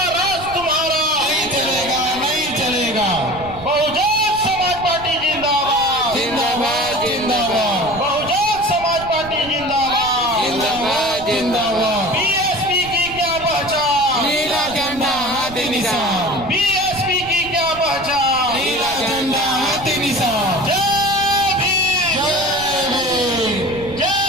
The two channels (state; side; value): noise; right; rumble, 16 dB below the sound